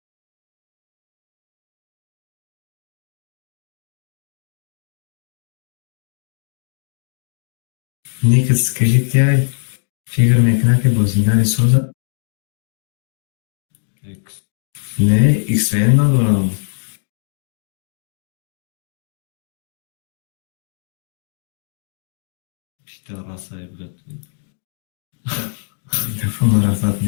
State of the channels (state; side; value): silent; right; digital silence